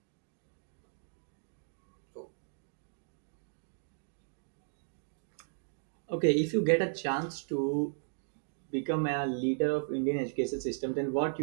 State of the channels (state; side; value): silent; left; digital silence